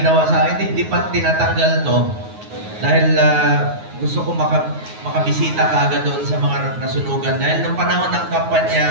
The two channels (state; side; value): late; left; 9.5 ms